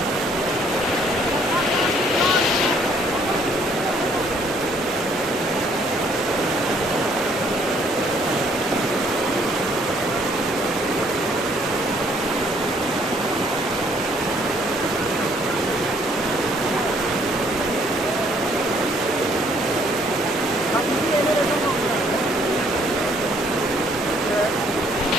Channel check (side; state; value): both; normal; correlation 0.64